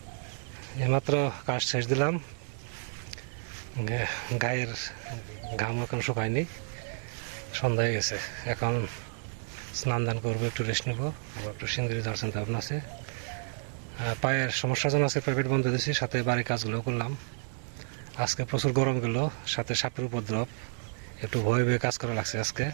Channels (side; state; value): left; silent; 57 dB below the other